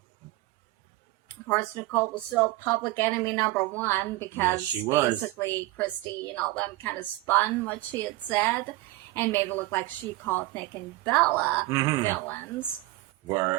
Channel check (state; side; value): quieter; left; 18.9 dB